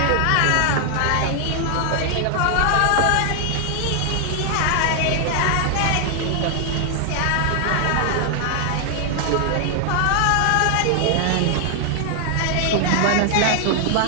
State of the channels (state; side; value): different; both; correlation 0.00